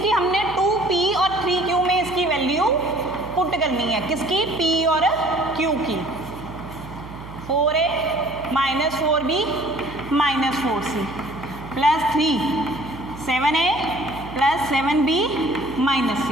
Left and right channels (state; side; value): noise; right; hum, 14 dB below the sound